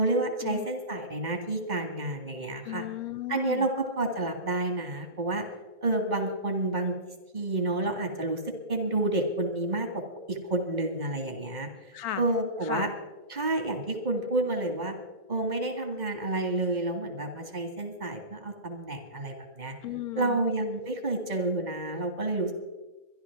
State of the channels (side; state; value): left; late; 2.1 ms